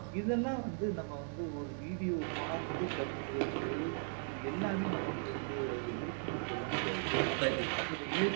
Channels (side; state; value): left; silent; 53 dB below the other